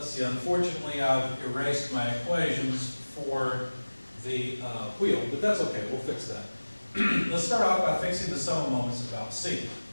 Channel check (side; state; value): both; inverted; correlation -1.00